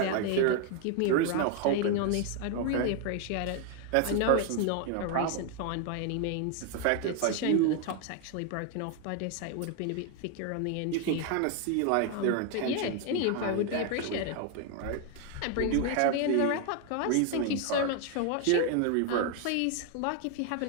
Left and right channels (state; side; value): different; both; correlation 0.01